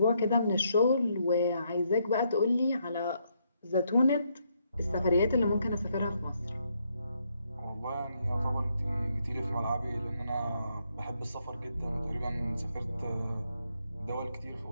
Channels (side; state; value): both; inverted; correlation -0.75